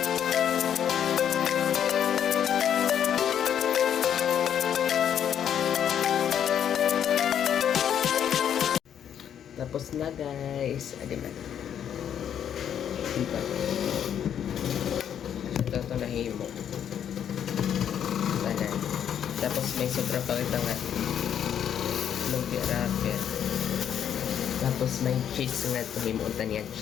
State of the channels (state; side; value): quieter; right; 9.2 dB